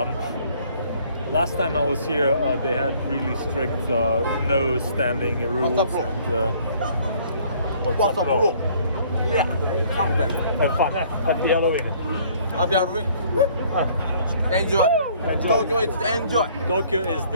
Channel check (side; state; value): both; inverted; correlation -0.59